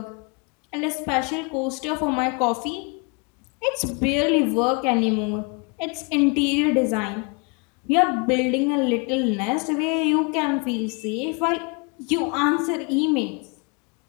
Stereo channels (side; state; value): right; quieter; 31.7 dB